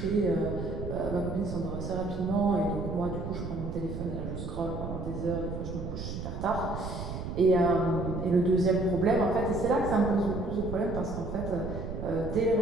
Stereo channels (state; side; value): noise; right; rumble, 6 dB below the sound